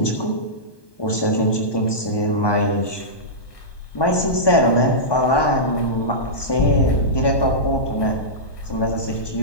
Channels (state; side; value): late; right; 1.2 ms